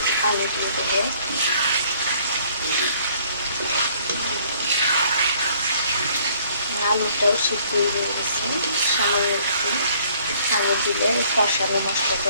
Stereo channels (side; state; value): both; inverted; correlation -0.60